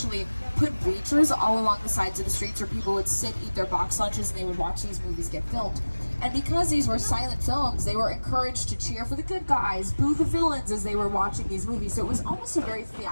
put bleachers all along the sides of the streets where people would sit, eat their box lunches, and they would watch these movies get filmed. And because these were silent films, they were encouraged to cheer for the good guys, boo the villains as they were watching these movies. So it was almost a very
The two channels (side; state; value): both; inverted; correlation -1.00